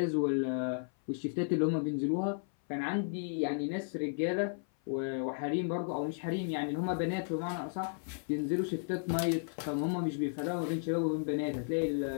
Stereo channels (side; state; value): right; silent; 55 dB below the other